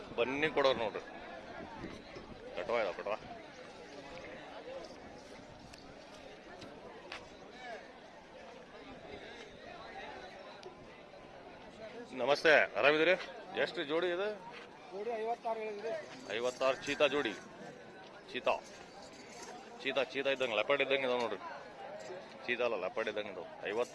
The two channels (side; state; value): both; identical; correlation 1.00